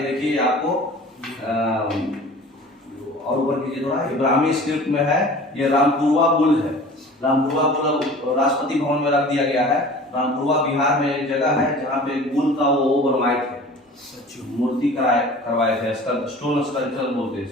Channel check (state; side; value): normal; both; correlation 0.43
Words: देखिए आपको और ऊपर कीजिए थोड़ा, इब्राहिमी स्क्रिप्ट में है, ये रामपुरवा बुल है। रामपुरवा बुल राष्ट्रपति भवन में रख दिया गया है। रामपुरवा बिहार में एक जगह है जहाँ पे बुल का वो बनवाए थे, मूर्ति करवाए थे, स्टोन स्कल्पचर बोलते हैं